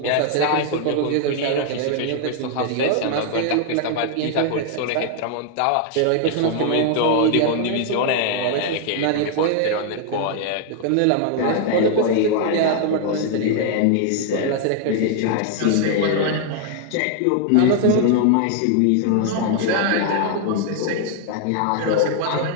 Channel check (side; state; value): both; different; correlation 0.00